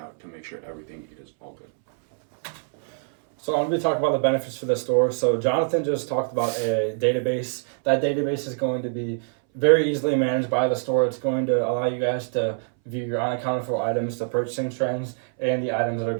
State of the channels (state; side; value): silent; left; 61 dB below the other